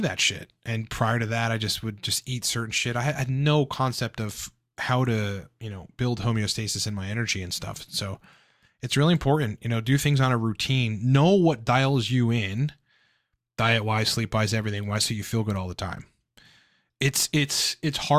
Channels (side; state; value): both; identical; correlation 1.00